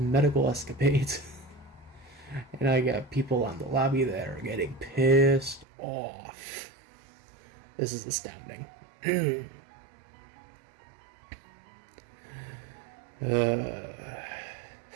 escapades. And I got people on the lobby that are getting pissed off. This is astounding.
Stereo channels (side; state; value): left; drops out; at 5.7 s